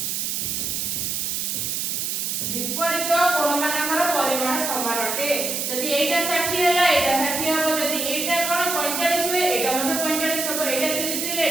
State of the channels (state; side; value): noise; right; hiss, 1 dB below the sound